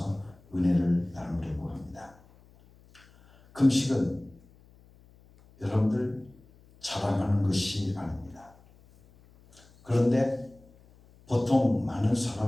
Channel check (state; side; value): noise; left; hum, 27 dB below the sound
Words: 은혜를 나누려고 합니다. 금식은 여러분들 자랑하는 것이 아닙니다. 그런데 보통 많은